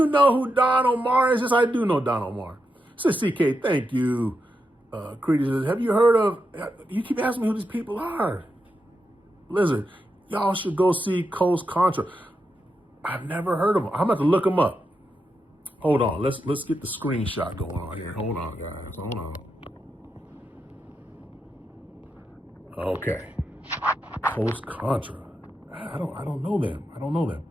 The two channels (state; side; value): normal; both; correlation 0.86